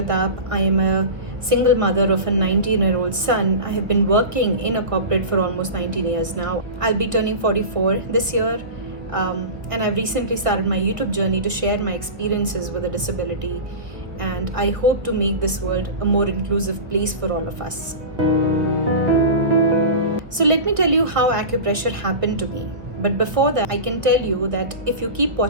I am a single mother of a 19-year-old son. I have been working in a corporate for almost 19 years now. I'll be turning 44 this year, and I've recently started my YouTube journey to share my experiences with a disability, and I hope to make this world a more inclusive place for all of us. So let me tell you how acupressure happened to me. But before that, I can tell you that if you keep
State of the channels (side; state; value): left; late; 1.4 ms